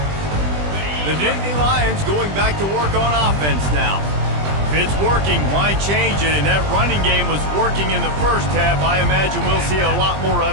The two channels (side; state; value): left; late; 20 ms